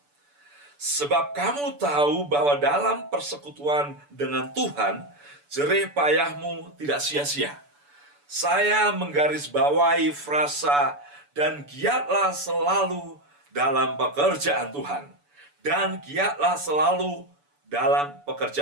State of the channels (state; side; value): late; left; 6.9 ms